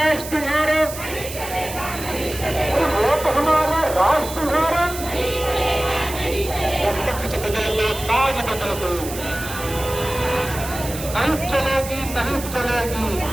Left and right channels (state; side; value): noise; right; hiss, 11 dB below the sound